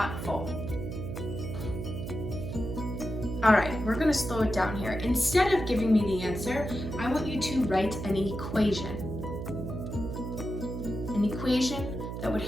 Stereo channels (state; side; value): noise; right; hum, 6 dB below the sound